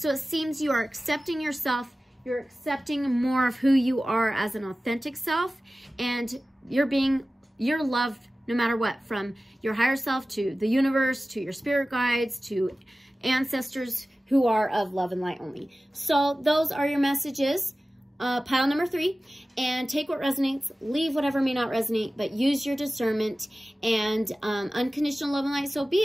it seems you are accepting yourself. You're accepting more of who you are as an authentic self, and you're loved no matter what, from your higher self to the universe, to your spirit guides, to ancestors who are of love and light only. So those are your messages. Pile number 3, and take what resonates, leave whatever may not resonate, but use your discernment and unconditional love and light, so be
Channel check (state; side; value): normal; both; correlation 0.96